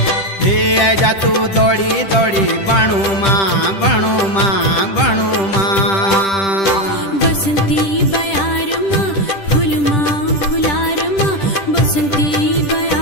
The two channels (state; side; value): late; right; 10 ms